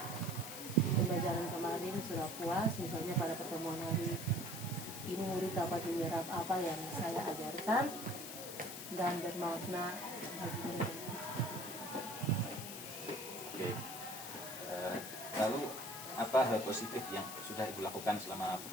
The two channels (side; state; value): left; noise; hiss, 9 dB below the sound